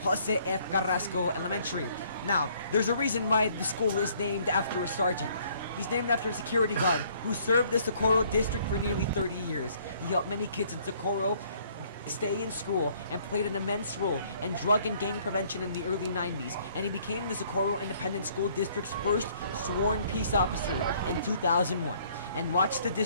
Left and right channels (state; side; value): inverted; both; correlation -0.61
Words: Jose F. Carrasco Elementary. Now, there's a reason why the school is named after a sergeant. He's named after a security guard who served the Socorro district for nearly 30 years. He helped many kids in Socorro stay in school and played an immense role in drug and gang prevention in the early 90s, and he became the Socorro Independent School District's first sworn peace officer in 2001 and watched the